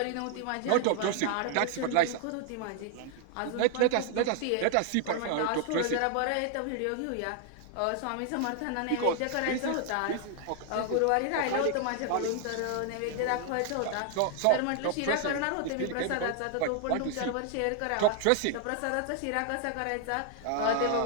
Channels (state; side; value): different; both; correlation 0.00